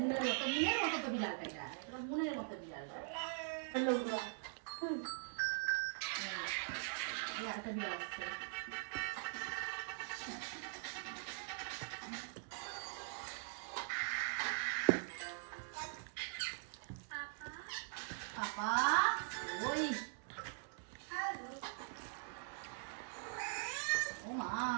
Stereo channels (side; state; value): left; silent; digital silence